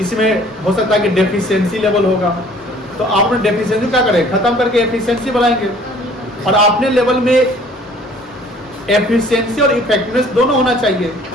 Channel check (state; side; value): normal; both; correlation 0.54